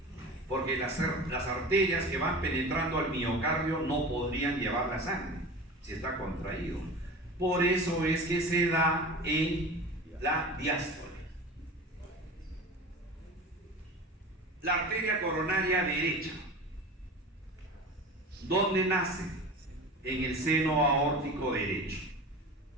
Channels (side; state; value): both; normal; correlation 0.34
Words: porque las arterias que van penetrando al miocardio no podrían llevar la sangre si está contraído. Por eso es que se da en la diástole. La arteria coronaria derecha, ¿dónde nace? En el seno aórtico derecho.